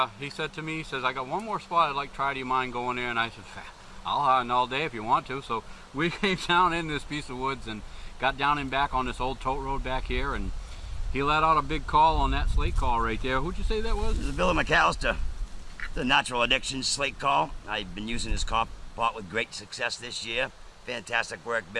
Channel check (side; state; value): both; identical; correlation 1.00